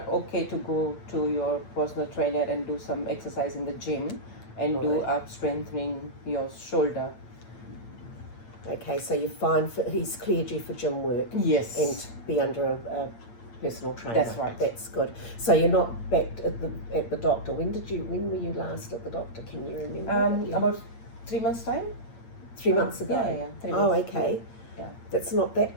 okay to go to your personal trainer and do some exercise in the gym and do up strengthening your shoulder. Okay, so you're fine for, he's cleared you for gym work. Yes. And be under a personal trainer. That's right. That's good. So you're not back at the doctor. When were you last at the doctor? Can you remember? About 3 months time. 3 months ago. Yeah. 3 Oh, months. okay. Yeah. That's not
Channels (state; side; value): late; right; 8.6 ms